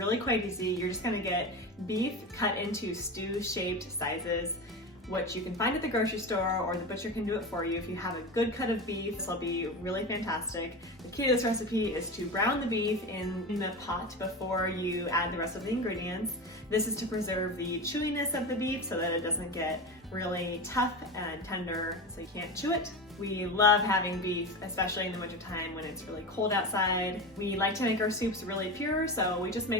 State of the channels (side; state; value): both; normal; correlation 0.24